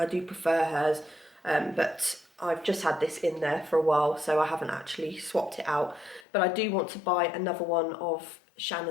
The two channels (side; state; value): right; drops out; at 6.2 s